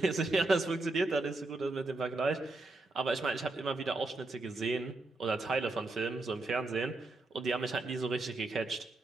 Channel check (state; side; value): quieter; left; 3.0 dB